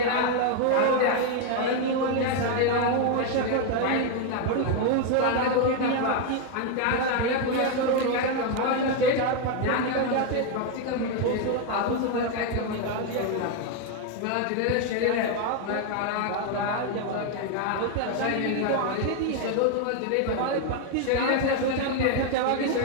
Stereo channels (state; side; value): different; both; correlation 0.01